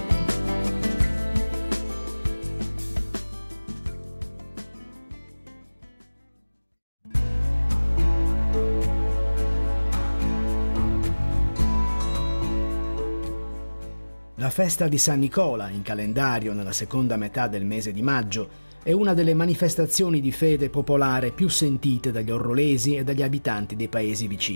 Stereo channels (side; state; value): both; inverted; correlation -1.00